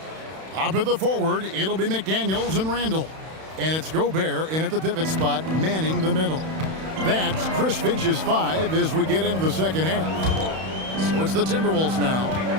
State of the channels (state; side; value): late; left; 31 ms